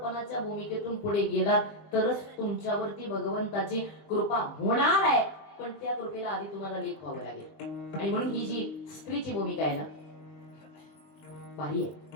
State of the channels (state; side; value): late; right; 20 ms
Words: भूमिकेतून पुढे गेलात तरच तुमच्यावरती भगवंताची कृपा होणार आहे. पण त्या कृपेला आधी तुम्हाला लेख व्हावं लागेल. आणि म्हणून ही जी स्त्रीची भूमिका आहे ना भारी आहे.